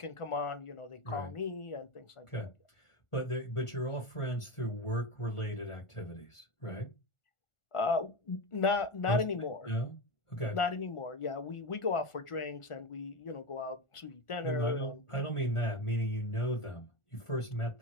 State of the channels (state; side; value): late; right; 1.4 ms